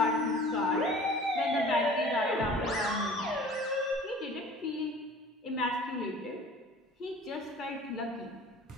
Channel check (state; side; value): normal; both; correlation 0.46